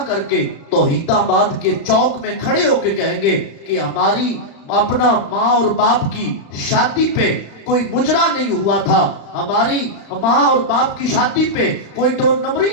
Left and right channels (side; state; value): right; late; 35 ms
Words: کر کے توحید آباد کے چوک میں کھڑے ہو کے کہیں گے کہ ہماری اپنا ماں اور باپ کی شادی پہ کوئی مجرا نہیں ہوا تھا ہماری ماں اور باپ کی شادی پہ کوئی دو نمبری